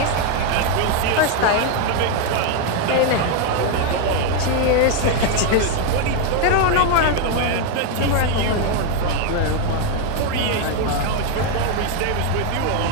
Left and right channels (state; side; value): different; both; correlation 0.01